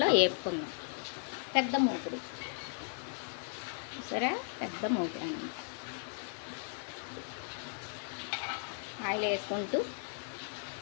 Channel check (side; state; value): right; silent; 54 dB below the other